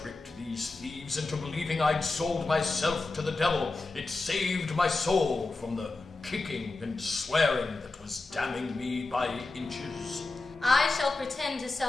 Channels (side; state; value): right; quieter; 3.3 dB